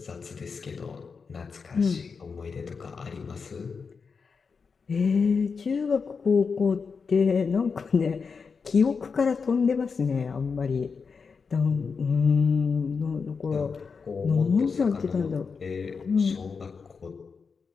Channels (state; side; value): quieter; right; 5.3 dB